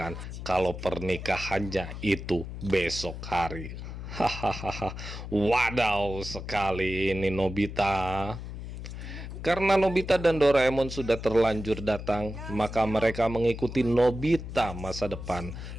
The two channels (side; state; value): left; noise; hum, 9 dB below the sound